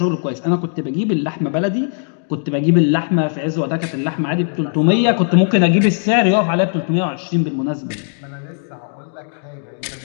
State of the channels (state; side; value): silent; right; digital silence